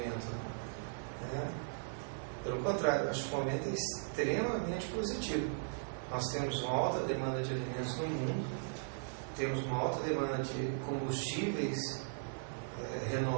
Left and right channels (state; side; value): silent; left; digital silence